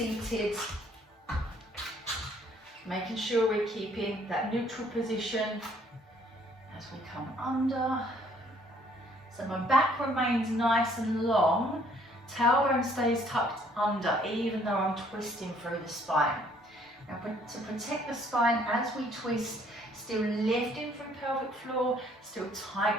Making sure we're keeping that neutral position as we come under. So my back remains nice and long. Tailbone stays tucked under, even though I'm twisting through the spine. Now to protect the spine as we twist, still lifting through pelvic floor, still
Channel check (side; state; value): both; normal; correlation 0.62